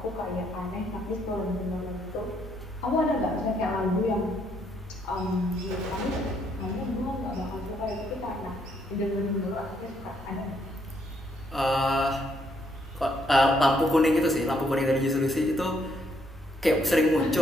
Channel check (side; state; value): both; normal; correlation 0.72